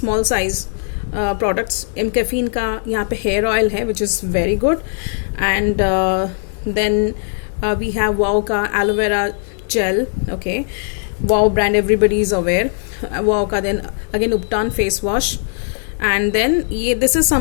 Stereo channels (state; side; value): silent; right; 62 dB below the other